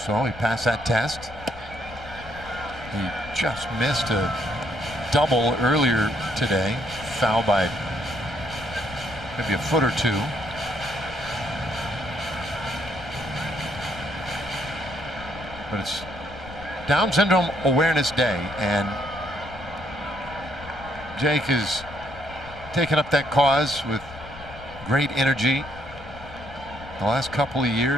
So he passed that test. He just missed a double earlier today, foul by maybe a foot or two. But it's Down Syndrome Awareness Day, and Jake is taken up that cause with great energy. The last couple of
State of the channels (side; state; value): left; noise; rumble, 17 dB below the sound